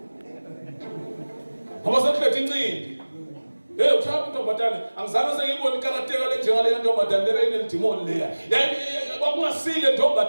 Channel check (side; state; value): both; inverted; correlation -1.00